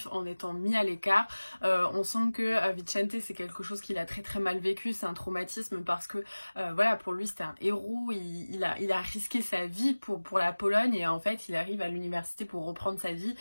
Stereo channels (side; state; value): both; inverted; correlation -1.00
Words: en étant mis à l'écart. On sent que Vicente c'est quelque chose qu'il a très très mal vécu, c'est un traumatisme parce que voilà, pour lui c'était un héros, il a risqué sa vie pour la Pologne et en fait il arrive à l'université pour reprendre sa vie